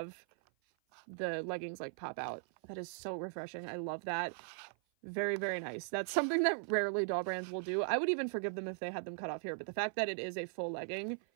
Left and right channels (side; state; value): left; silent; 52 dB below the other